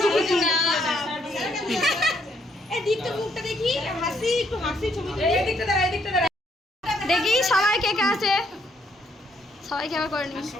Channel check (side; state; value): both; normal; correlation 0.71